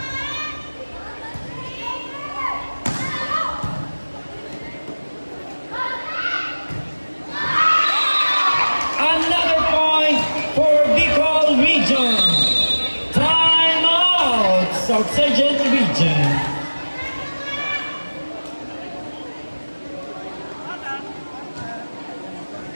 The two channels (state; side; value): inverted; both; correlation -1.00